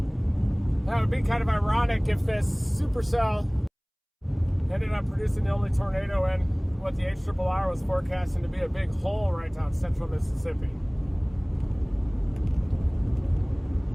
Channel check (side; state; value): both; identical; correlation 1.00